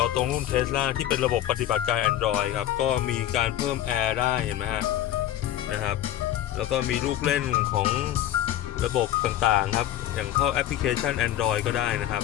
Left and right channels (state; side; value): quieter; right; 12.5 dB